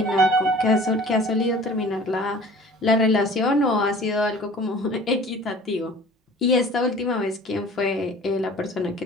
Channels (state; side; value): normal; both; correlation 0.46